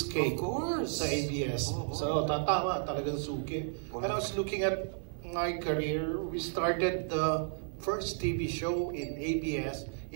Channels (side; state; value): left; silent; 56 dB below the other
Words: sa ABS. So, tama, talagang suki. And I was looking at my career. We started the first TV show in ABS